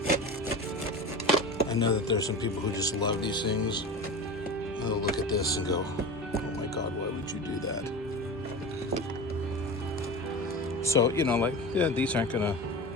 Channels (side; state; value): both; normal; correlation 0.30